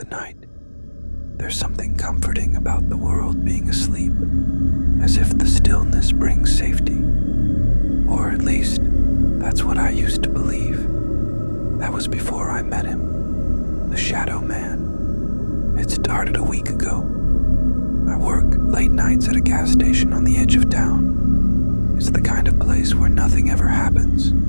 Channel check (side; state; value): both; inverted; correlation -1.00